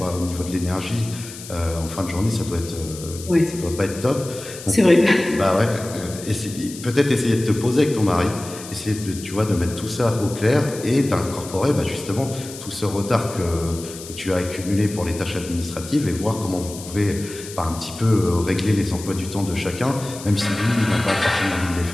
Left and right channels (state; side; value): noise; left; hiss, 13 dB below the sound